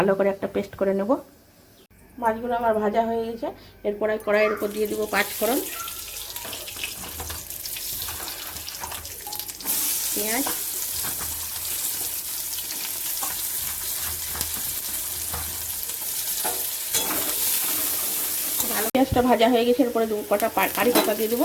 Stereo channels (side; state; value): both; identical; correlation 1.00